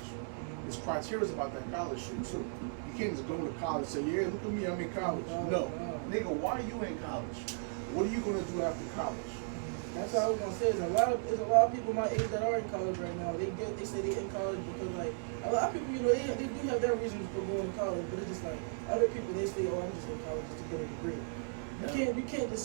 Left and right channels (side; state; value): left; silent; 54 dB below the other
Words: There's criteria about that college shit too. You can't just go to college and say, yeah, look at me, I'm in college. No. Nigga, why are you in college? What are you gonna do after college? That's what I was gonna say. There's a lot of people my age that are in college right now. They say they in college because like a lot of people, you know, they do have their reasons for going to college, but it's just like other people they say, oh, I'm just in college just to get a degree. You can't